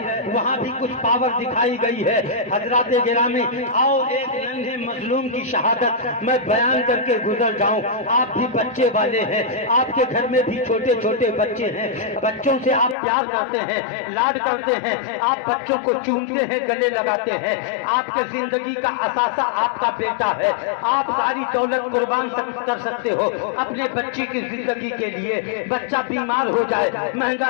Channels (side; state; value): right; drops out; at 13.0 s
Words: وہاں بھی کچھ پاور دکھائی گئی ہے۔ حضرات گرامی، آؤ ایک ننھے مظلوم کی شہادت میں بیان کر کے گزر جاؤں۔ آپ بھی بچے والے ہیں، آپ کے گھر میں بھی چھوٹے چھوٹے بچے ہیں، بچوں سے آپ پیار کرتے ہیں، لاڈ کرتے ہیں، آپ بچوں کو چومتے ہیں، گلے لگاتے ہیں۔ آپ کے زندگی کا اثاثہ آپ کا بیٹا ہے، آپ ساری دولت قربان کر سکتے ہو اپنے بچے کی زندگی کے لیے۔ بچہ بیمار ہو جائے، مہنگا